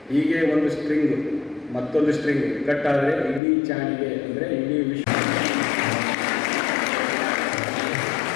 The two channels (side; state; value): right; drops out; at 3.4 s